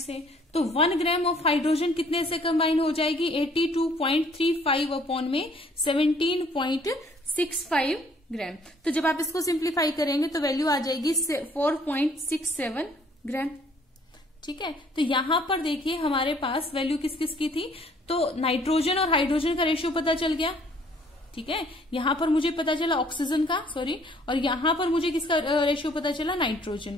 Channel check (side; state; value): both; normal; correlation 0.60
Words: तो 1 ग्राम ऑफ हाइड्रोजन कितने से कंबाइन हो जाएगी, 82.35 अपॉन में 17.65 ग्राम। तो जब आप इसको सिंप्लीफाई करेंगे तो वैल्यू आ जाएगी 4.67 ग्राम, ठीक है। तो यहां पर देखिए हमारे पास वैल्यू किस किस की थी, तो नाइट्रोजन और हाइड्रोजन का रेशियो पता चल गया, ठीक है। यहां पर मुझे पता चला ऑक्सीजन का, और यहां पर मुझे किसका रेशियो पता चला, नाइट्रोजन